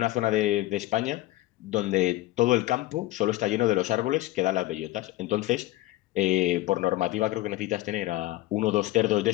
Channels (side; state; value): right; quieter; 17.1 dB